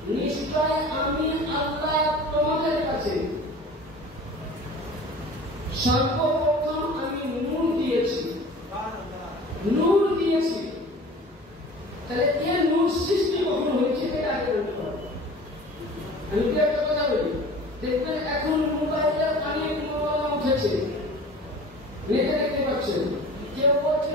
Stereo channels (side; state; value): both; normal; correlation 0.42